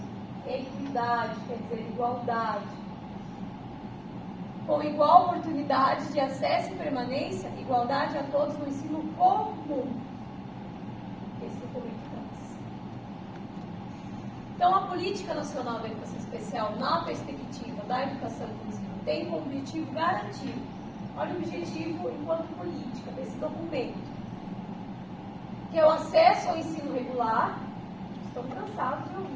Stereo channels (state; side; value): identical; both; correlation 1.00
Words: Equidade, quer dizer, igualdade. Com igual oportunidade de acesso e permanência, igualdade a todos no ensino comum. Esse documento traz. Então, a Política Nacional da Educação Especial, na perspectiva da educação inclusiva, tem como objetivo garantir, olha o objetivo enquanto política desse documento, que é o acesso ao ensino regular. Estou cansados de